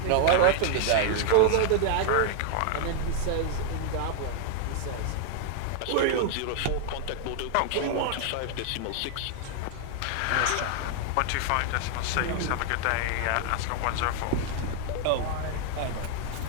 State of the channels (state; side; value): different; both; correlation 0.00